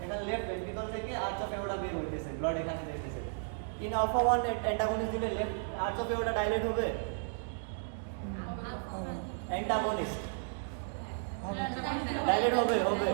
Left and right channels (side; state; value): left; silent; digital silence